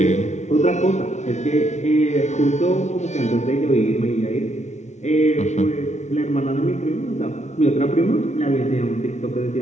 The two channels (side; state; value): right; late; 0.33 ms